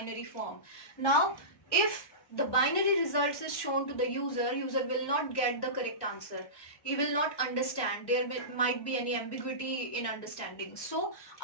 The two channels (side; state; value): right; late; 1.1 ms